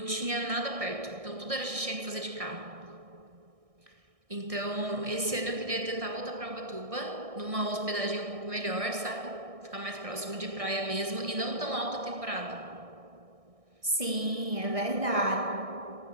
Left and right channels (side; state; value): left; late; 1.6 ms